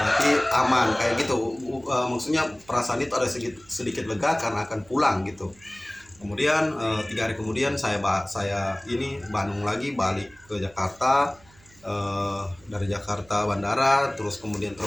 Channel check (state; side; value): noise; right; hum, 27 dB below the sound